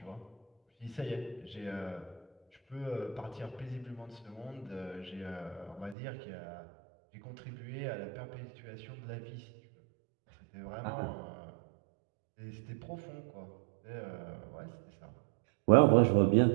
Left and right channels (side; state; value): left; drops out; at 6.0 s